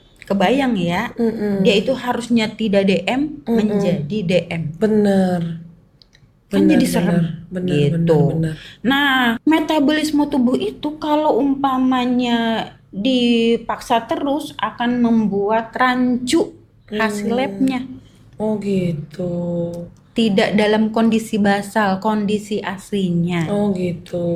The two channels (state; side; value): identical; both; correlation 1.00